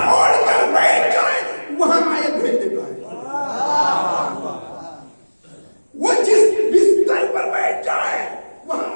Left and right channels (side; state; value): both; inverted; correlation -1.00